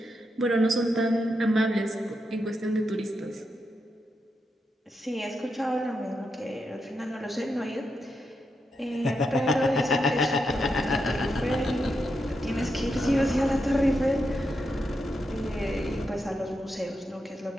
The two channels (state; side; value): normal; both; correlation 0.84